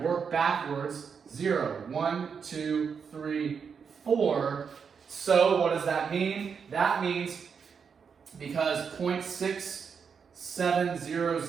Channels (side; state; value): left; quieter; 6.3 dB